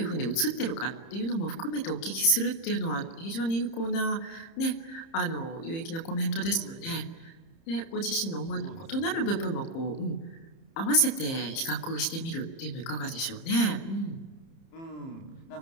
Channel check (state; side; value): late; right; 30 ms